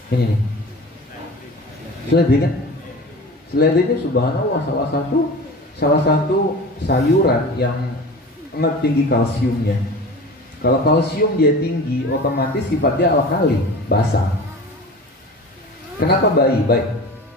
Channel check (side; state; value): both; normal; correlation 0.36